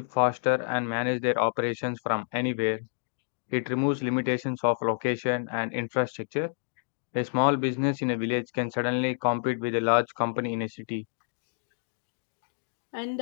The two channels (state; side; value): silent; right; digital silence